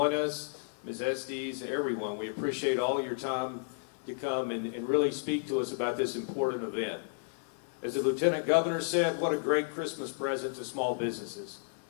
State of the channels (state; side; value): silent; right; digital silence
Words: us. Ms. Estes, everyone, we appreciate all your time to come and really speak to us about this important event. As the Lieutenant Governor said, what a great Christmas present to small businesses.